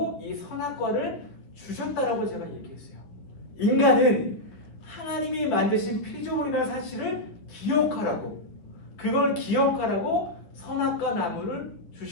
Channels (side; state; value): right; late; 10 ms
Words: 이 선악과를 주셨다라고 제가 얘기했어요. 인간은 하나님이 만드신 피조물이라는 사실을 기억하라고, 그걸 기억하라고 선악과 나무를